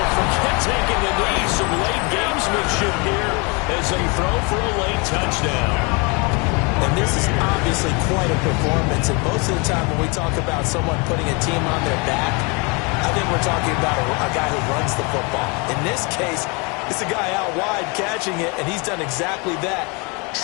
forget taking the knee. Some late gamesmanship here as they throw for a late touchdown. And this is obviously quite a performance. And most of the time when we talk about someone putting a team on their back, I think we're talking about a guy who runs the football. In this case, it's a guy out wide catching it, and he's done exactly that,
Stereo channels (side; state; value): right; quieter; 30.5 dB